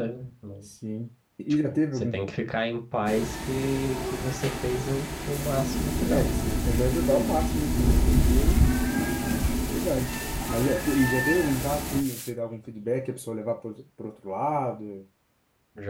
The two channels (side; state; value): both; identical; correlation 1.00